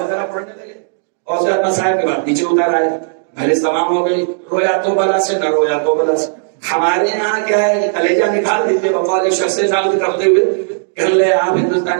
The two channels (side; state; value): left; silent; digital silence